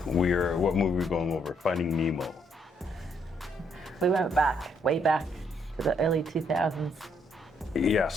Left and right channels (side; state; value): both; normal; correlation 0.72